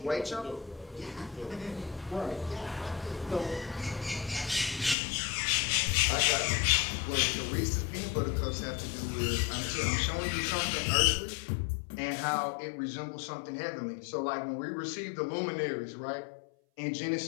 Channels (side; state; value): right; drops out; at 5.0 s